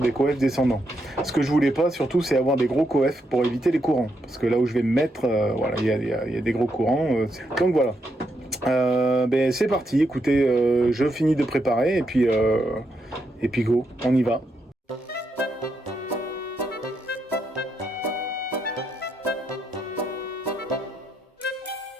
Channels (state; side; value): normal; both; correlation 0.81